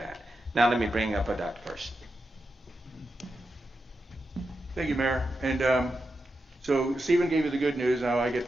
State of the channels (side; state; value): both; normal; correlation 0.88